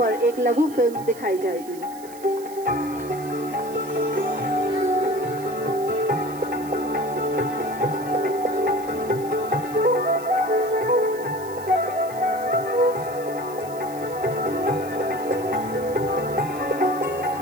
एक लघु फिल्म दिखाई जाएगी।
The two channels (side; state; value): right; noise; hiss, 19 dB below the sound